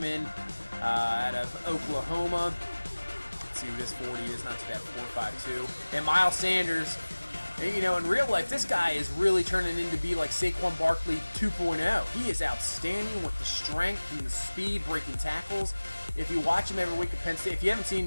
out of Oklahoma. Let's see what his 40 is. Not too bad, 4.52. And Miles Sanders, in real life, this guy is really turning into be like Saquon Barkley 2.0. He is outstanding with the strength and the speed, breaking tackles. If you watch him every week at Penn State, if you haven't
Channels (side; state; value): both; inverted; correlation -1.00